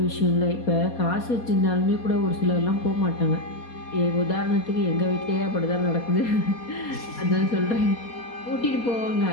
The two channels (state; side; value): late; right; 4.2 ms